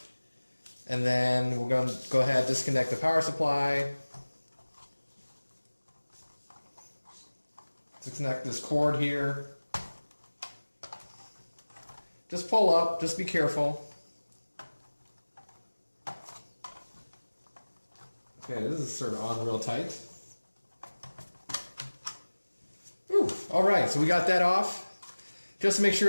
And then we're going to go ahead and disconnect the power supply. Disconnect this cord here. Just pull up, just be careful. Okay, this is sort of on real tight. Ooh, alright, so we got that off. Just to make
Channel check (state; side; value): inverted; both; correlation -1.00